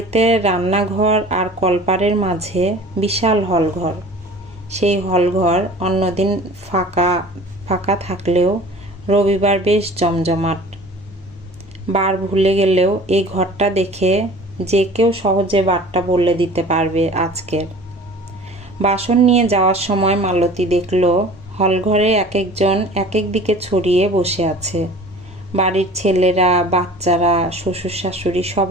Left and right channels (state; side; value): normal; both; correlation 0.44